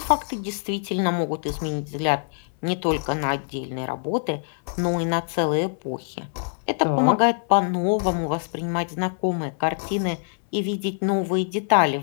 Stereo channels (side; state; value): right; silent; 61 dB below the other